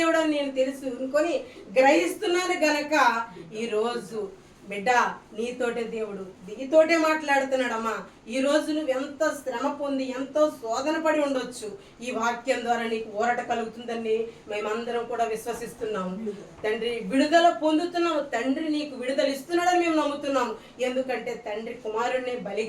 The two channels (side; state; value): both; identical; correlation 1.00